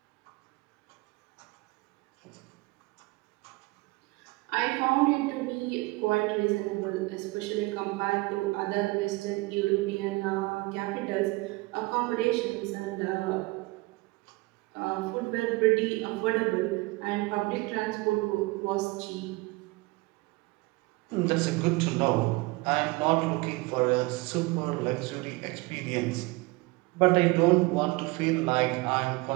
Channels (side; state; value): left; quieter; 23.5 dB